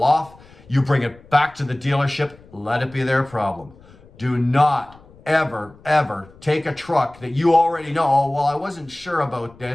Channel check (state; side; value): noise; left; rumble, 25 dB below the sound